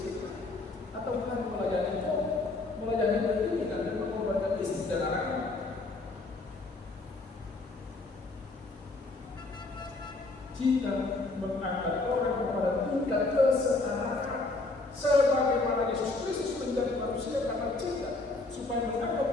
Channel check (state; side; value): quieter; right; 3.3 dB